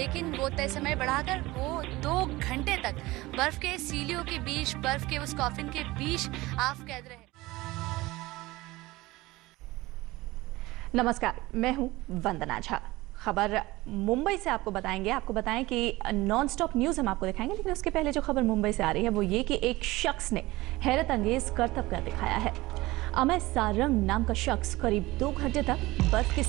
वो तय समय बढ़ाकर वो 2 घंटे तक बर्फ़ के सीलियों के बीच, बर्फ़ के उस कॉफिन के बीच आप कैद रहे। नमस्कार, मैं हूं वंदना झा। खबर मुंबई से आपको बताएं कि नॉन स्टॉप न्यूज़ हम आपको दिखाएंगे, लेकिन उसके पहले जो खबर मुंबई से आ रही है वो ये कि एक शख्स ने हैरत अंगेज करतब कर दिखाया है। अमेय सारंग नाम का शख्स करीब 2 घंटे तक बर्फ की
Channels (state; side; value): quieter; left; 19.7 dB